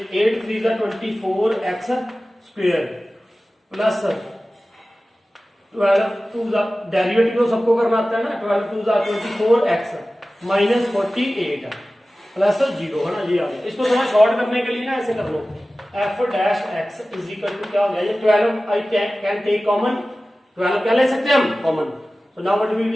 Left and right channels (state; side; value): normal; both; correlation 0.96